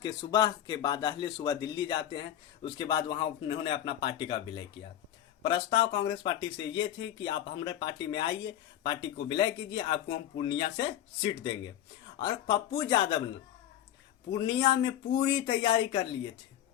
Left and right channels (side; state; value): right; quieter; 11.6 dB